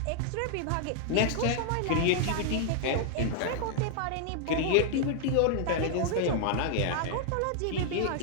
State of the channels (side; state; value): both; different; correlation 0.00